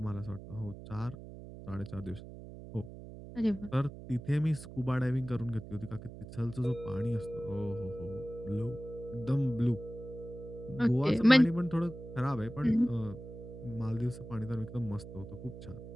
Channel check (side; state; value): right; noise; hum, 13 dB below the sound